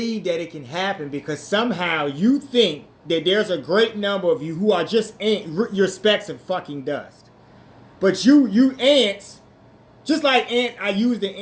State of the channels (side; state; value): both; identical; correlation 1.00